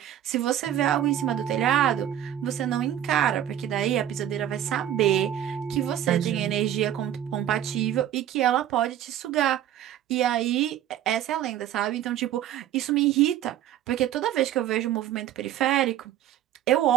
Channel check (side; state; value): left; quieter; 11.3 dB